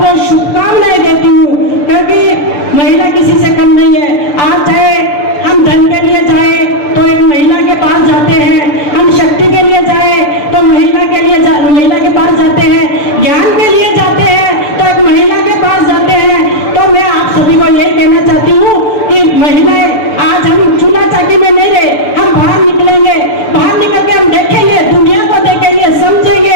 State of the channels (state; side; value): late; right; 6.8 ms